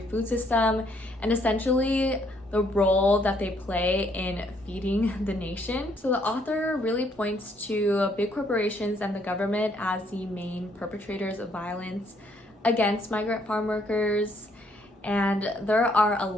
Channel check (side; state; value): both; normal; correlation 0.69